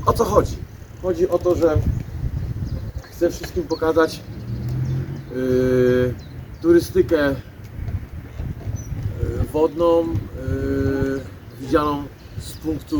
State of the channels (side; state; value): both; identical; correlation 1.00